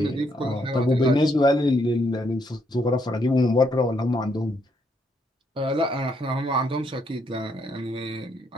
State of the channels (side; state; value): both; normal; correlation 0.74